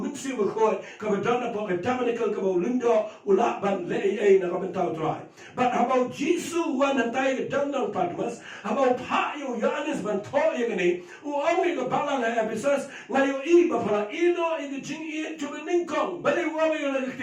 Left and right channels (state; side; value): identical; both; correlation 1.00